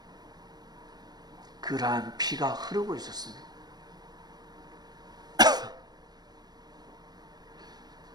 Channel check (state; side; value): late; left; 0.19 ms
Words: 그러한 피가 흐르고 있었습니다.